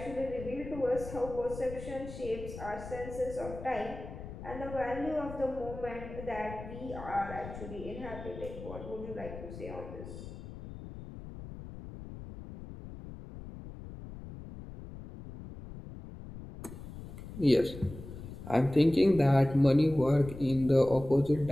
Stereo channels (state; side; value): noise; left; rumble, 12 dB below the sound